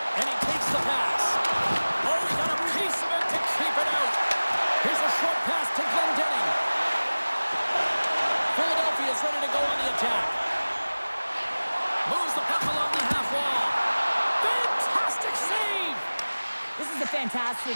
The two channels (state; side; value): inverted; both; correlation -1.00